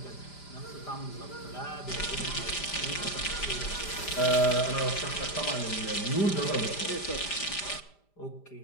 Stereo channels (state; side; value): late; right; 5.0 ms